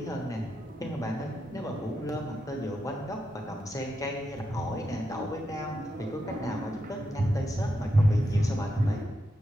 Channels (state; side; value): normal; both; correlation 0.85